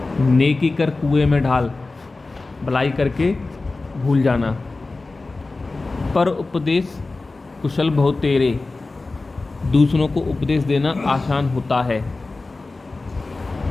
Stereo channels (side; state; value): right; quieter; 3.5 dB